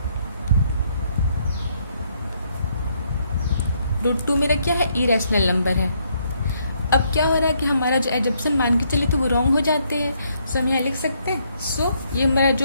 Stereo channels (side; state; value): both; inverted; correlation -0.72